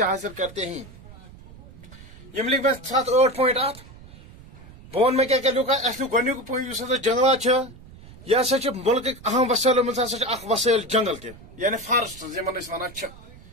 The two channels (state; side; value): noise; right; rumble, 20 dB below the sound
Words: حاصل کرتے ہیں یم لکھ میں 7-8 پوائنٹ بہن میں کیا لکھ گۄڈنیُک پوائنٹ اس جنگلات یہ ہسا ملک اہم وسائلو مز ہسا وسائل جنگل تہ یعنی فارسٹ یمن ونان